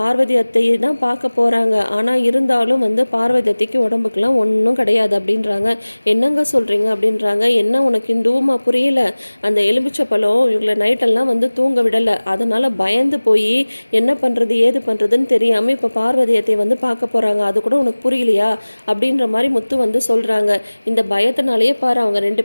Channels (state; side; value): inverted; both; correlation -1.00